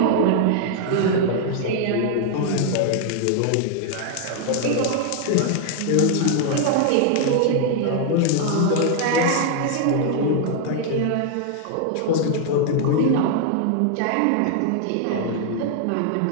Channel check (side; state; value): both; different; correlation 0.00